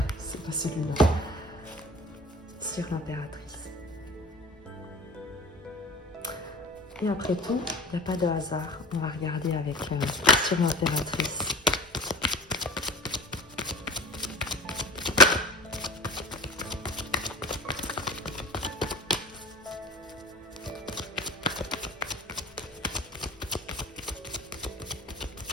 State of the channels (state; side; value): normal; both; correlation 0.38